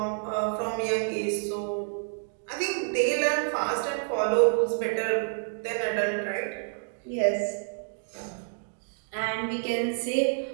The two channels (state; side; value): silent; left; digital silence